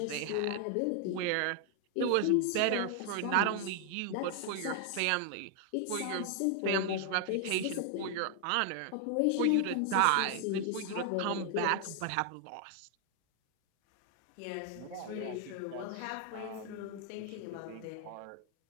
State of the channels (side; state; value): both; different; correlation 0.00